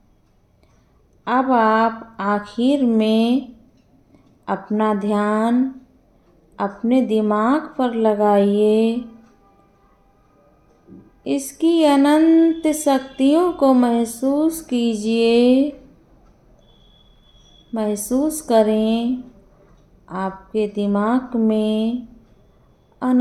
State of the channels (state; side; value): identical; both; correlation 1.00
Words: अब आप आखिर में अपना ध्यान अपने दिमाग पर लगाइए। इसकी अनंत शक्तियों को महसूस कीजिए। महसूस करें आपके दिमाग में